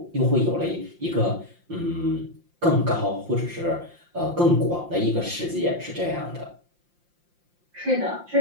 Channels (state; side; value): late; left; 5.7 ms